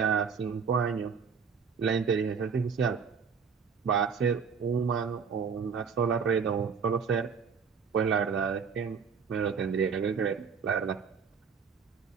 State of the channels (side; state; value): left; quieter; 6.2 dB